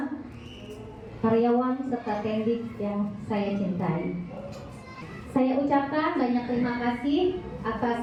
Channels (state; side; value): identical; both; correlation 1.00